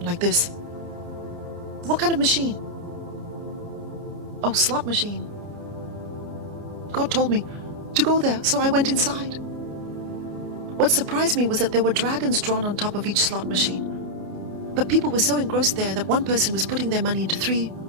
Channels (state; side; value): late; left; 29 ms